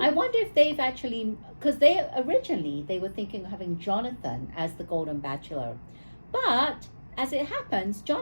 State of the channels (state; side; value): inverted; both; correlation -1.00